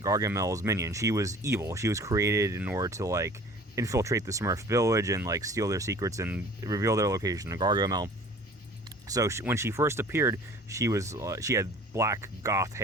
minion. She was evil. She was created in order to like infiltrate the Smurf village and like steal their secrets and reveal their location to Gargamel. So when she first appeared, she had black goth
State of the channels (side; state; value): both; normal; correlation 0.47